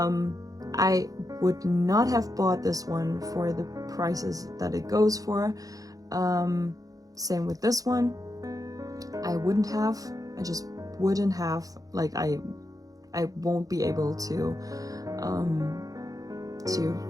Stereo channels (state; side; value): late; left; 0.17 ms